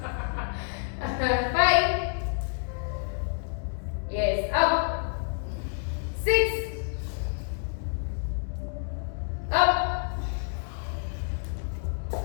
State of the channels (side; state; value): right; silent; 59 dB below the other